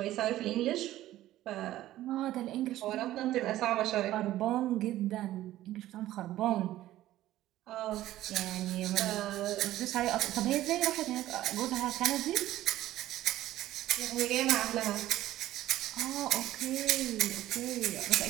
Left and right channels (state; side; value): quieter; left; 14.5 dB